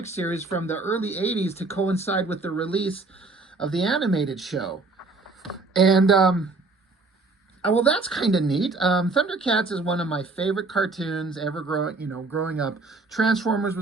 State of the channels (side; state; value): left; quieter; 3.6 dB